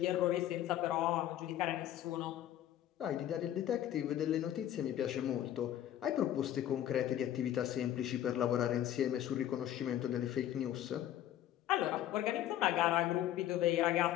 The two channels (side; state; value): right; quieter; 12.0 dB